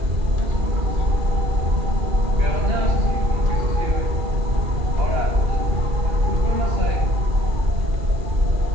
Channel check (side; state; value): left; late; 2.4 ms